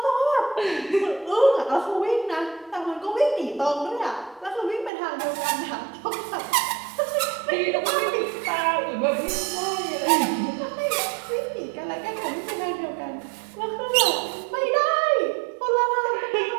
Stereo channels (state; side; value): drops out; left; at 4.9 s